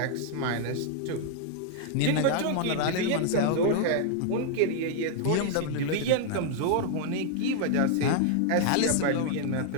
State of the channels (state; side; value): different; both; correlation 0.00